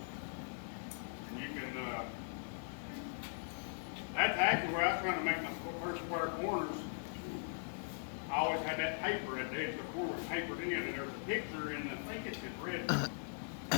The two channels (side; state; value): right; silent; digital silence